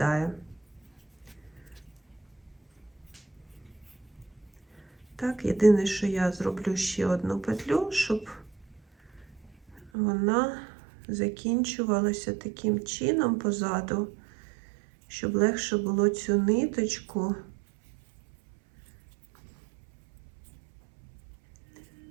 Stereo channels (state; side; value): drops out; left; at 9.9 s